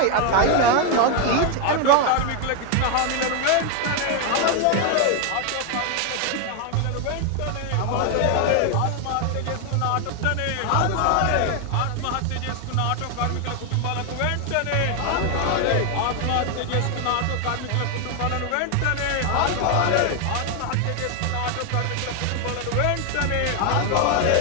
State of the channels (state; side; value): different; both; correlation 0.01